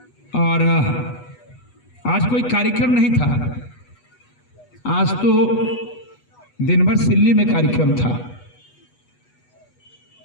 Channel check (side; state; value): right; late; 8.2 ms